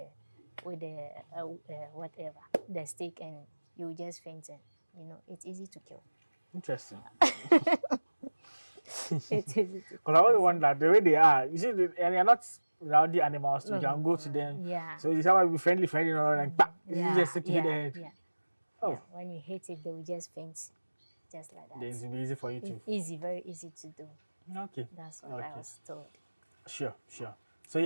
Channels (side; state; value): both; inverted; correlation -1.00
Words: whatever the stick, and you will just faint. And it's easy to kill. Interesting. It's easy to. Because I always wonder the way they are. You see, and they're not rowdy animals. So you can go to them. Yeah. So you someone be friendly, and bah, you just stick to hit the head. Yeah. Oh. Yeah. When you hit it, they will just faint, just like that. Then it will be easy for you to. It's easy, very easy to do. Okay. That's what I was told. Sure. So